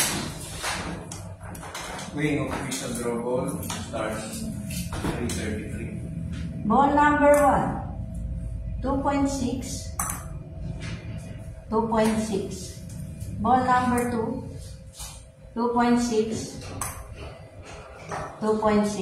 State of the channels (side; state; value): both; identical; correlation 1.00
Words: Weighing of official draw ball starts 333. Ball number 1, 2.6, 2.6. Ball number 2, 2.6,